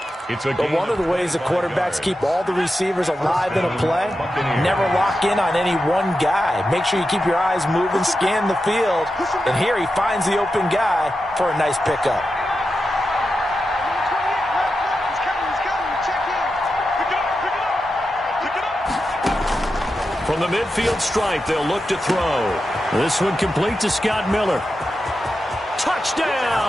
But one of the ways the quarterbacks keep all the receivers alive in a play, never lock in on any one guy. Make sure you keep your eyes moving, scan the field. And here he finds the open guy for a nice pickup. From the midfield stripe, they'll look to throw. This one complete to Scott Miller.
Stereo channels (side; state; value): both; normal; correlation 0.90